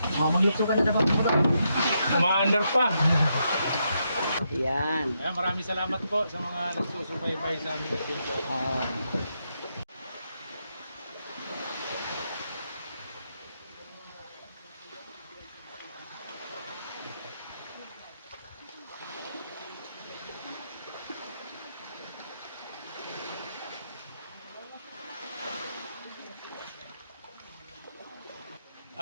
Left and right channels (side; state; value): both; inverted; correlation -0.81